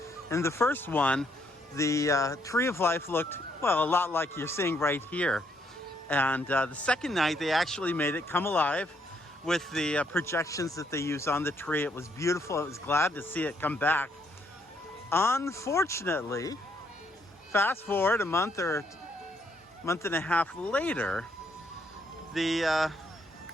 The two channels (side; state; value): both; normal; correlation 0.72